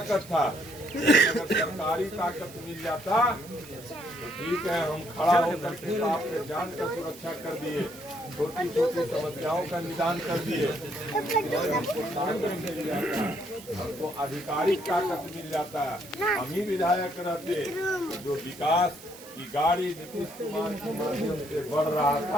था, अगर सरकारी ताकत मिल जाता तो ठीक है, हम खड़ा होकर के आपके जान का सुरक्षा कर दिए, छोटी छोटी समस्याओं का निदान कर दिए। हमको ताकत मिल जाता, हमको आधिकारिक ताकत मिल जाता, हम ही विधायक रहते तो जो विकास की गाड़ी नीतीश कुमार के माध्यम से बढ़ रहा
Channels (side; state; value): right; noise; hiss, 18 dB below the sound